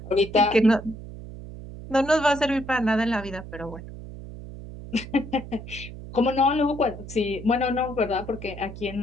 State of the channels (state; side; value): noise; right; hum, 12 dB below the sound